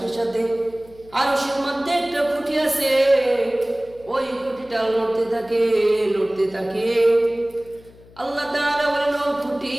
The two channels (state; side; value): noise; left; hum, 24 dB below the sound